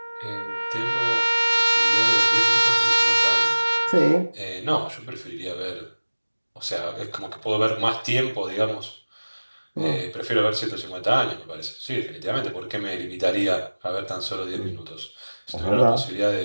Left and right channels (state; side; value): inverted; both; correlation -1.00